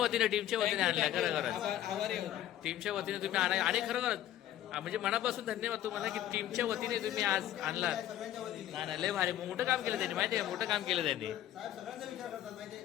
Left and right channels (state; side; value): quieter; right; 12.4 dB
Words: आणल्या खरं खरं टीमच्या वतीने तुम्ही आणा आणि खरं खरंच म्हणजे मनापासून धन्यवाद तुम्हाला की टीमच्या वतीने तुम्ही आज आणलात नाही नाही लय भारी मोठं काम केलं त्यांनी माहिती आहे मोठं काम केलं त्यांनी नाही